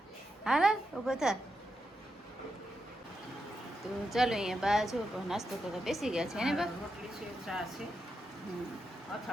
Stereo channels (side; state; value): both; normal; correlation 0.86